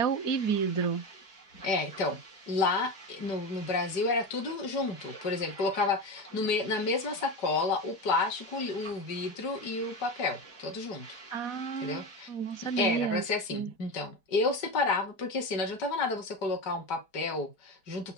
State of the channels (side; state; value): right; late; 4.8 ms